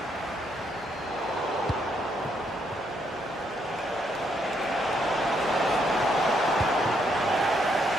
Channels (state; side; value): normal; both; correlation 0.74